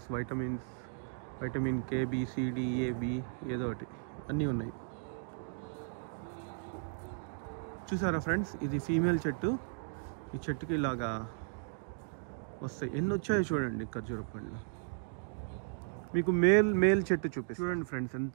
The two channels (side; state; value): left; silent; digital silence